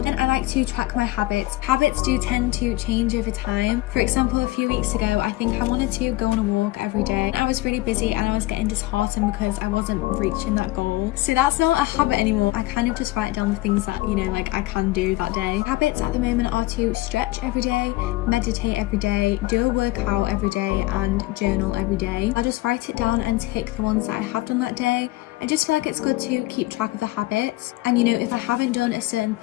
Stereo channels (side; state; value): right; quieter; 19.0 dB